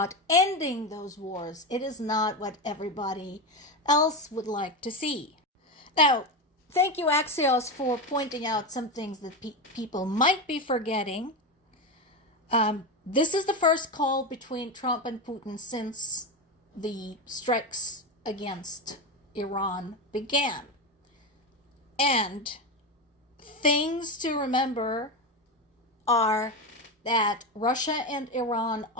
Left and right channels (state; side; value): normal; both; correlation 0.16